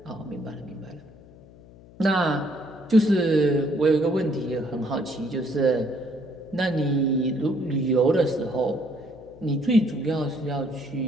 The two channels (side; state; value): left; noise; hum, 22 dB below the sound